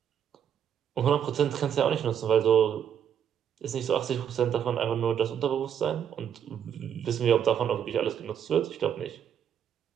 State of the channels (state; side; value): quieter; left; 8.8 dB